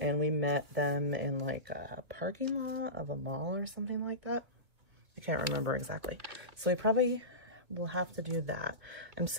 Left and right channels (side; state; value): left; late; 2.3 ms